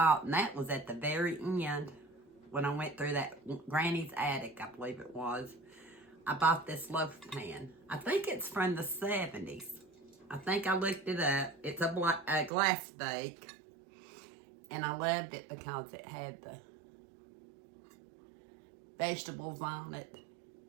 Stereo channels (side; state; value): left; drops out; at 12.5 s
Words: and that was at the very end, when I went through that Granny's attic, I believe it was, I bought this loaf pan. I think it's from the 70s. I think I looked it up. It's a glass bake, and I loved it because it had the vegetables on it.